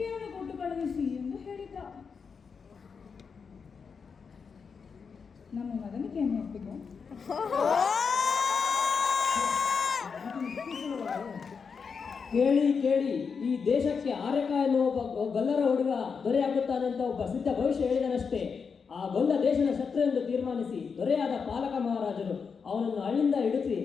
ಕೊಟ್ಟು ಕಳುಹಿಸಿ ಎಂದು ಹೇಳಿದ್ದ. ನಮ್ಮ ಮಗನಿಗೆ ಏನು ಒಪ್ಪಿಗೆ? ಕೇಳಿ ಕೇಳಿ, ಈ ದೇಶಕ್ಕೆ ಆರ್ಯಕ ಎನ್ನುವ ಒಬ್ಬ ಗೊಲ್ಲರ ಹುಡುಗ ದೊರೆಯಾಗುತ್ತಾನಂತ ಒಬ್ಬ ಸಿದ್ಧ ಭವಿಷ್ಯ ಹೇಳಿದನಷ್ಟೇ. ಆ ಗೊಲ್ಲ ದೇಶದ ಶತ್ರು ಎಂದು ತೀರ್ಮಾನಿಸಿ ದೊರೆಯಾದ ಪಾಲಕ ಮಹಾರಾಜರು ಅವನನ್ನು ಹಳ್ಳಿಂದ ಹಿಡಿಸಿ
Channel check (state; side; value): quieter; right; 5.8 dB